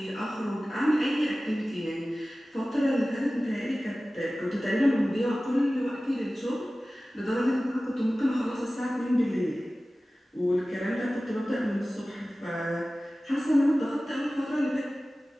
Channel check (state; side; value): normal; both; correlation 0.97